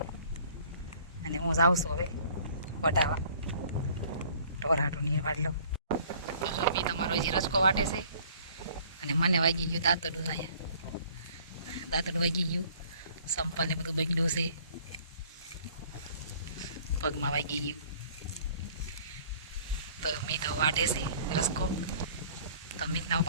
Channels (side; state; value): both; inverted; correlation -0.53